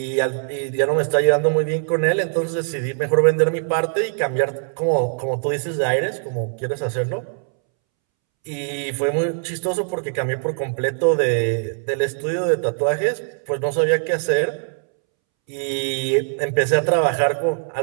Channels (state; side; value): silent; left; 65 dB below the other